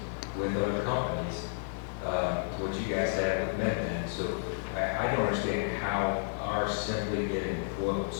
with other companies to what you guys had with MedBen. So I don't understand how our simply getting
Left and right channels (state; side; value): silent; right; digital silence